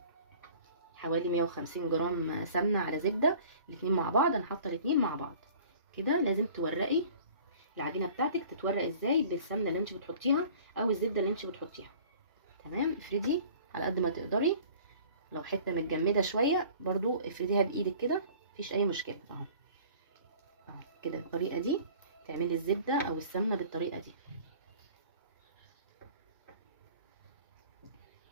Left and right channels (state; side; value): inverted; both; correlation -0.47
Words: حوالي 150 جرام سمنه على زبده، الاتنين مع بعض. انا حاطه الاتنين مع بعض كده. لازم تورقي العجينه بتاعتك، تتورق ازاي؟ بالسمنه اللي انت بتحطيها او الزبده اللي انت بتحطيها. تمام، افردي على قد ما تقدري، لو حته متجمده شويه برضو افرديها بايدك كده، مفيش اي مشكله اهو اهو. كده الطريقه دي تعملي الزبده او السمنه بالطريقه دي.